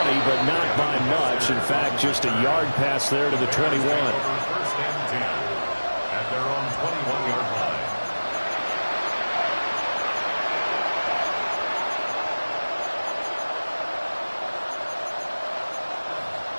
but not by much. In fact, just a yard pass there to the 21. First and 10 at their own 21-yard line.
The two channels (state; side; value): inverted; both; correlation -1.00